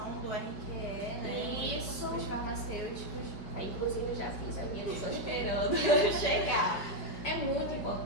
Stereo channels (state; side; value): late; right; 5.1 ms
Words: do RQE, né? Isso. Dos farmacêuticos. Inclusive, já fiz a minha, estou esperando chegar. É muito